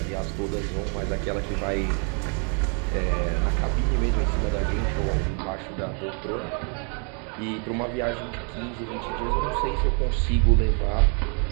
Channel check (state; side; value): quieter; left; 38.9 dB